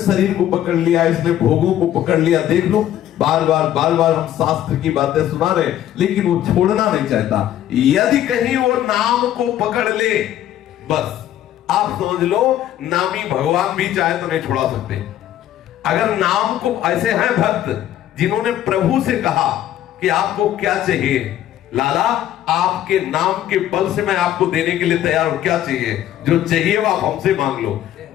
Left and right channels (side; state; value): right; quieter; 11.9 dB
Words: को पकड़ लिया, इसने भोगों को पकड़ लिया। देख लो, बार बार हम शास्त्र की बातें सुना रहे, लेकिन वो छोड़ना नहीं चाहता। यदि कहीं वो नाम को पकड़ ले, बस आप समझ लो नामी भगवान भी चाहे तो नहीं छुड़ा सकते। अगर नाम को, ऐसे हैं भक्त जिन्होंने प्रभु से कहा कि आपको क्या चाहिए, लाला आपके नाम के बल से मैं आपको देने के लिए तैयार हूं, क्या चाहिए, जो चाहिए वो आप हमसे मांग लो।